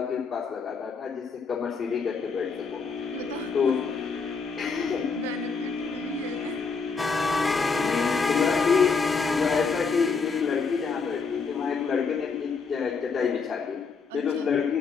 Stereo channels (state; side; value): quieter; right; 5.1 dB